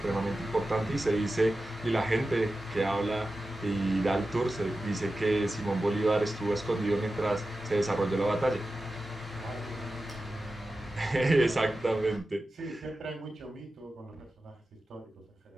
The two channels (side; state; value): both; normal; correlation 0.93